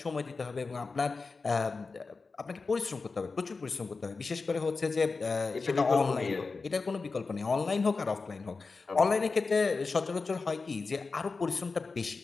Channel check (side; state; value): right; quieter; 4.2 dB